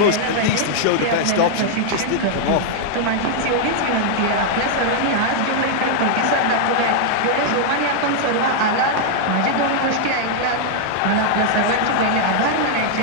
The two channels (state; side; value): different; both; correlation -0.01